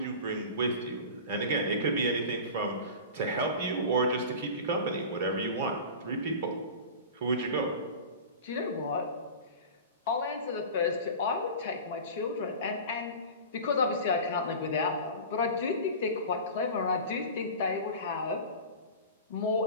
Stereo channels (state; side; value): inverted; both; correlation -0.33